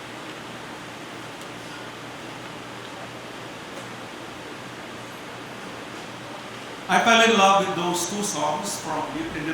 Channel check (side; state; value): both; identical; correlation 1.00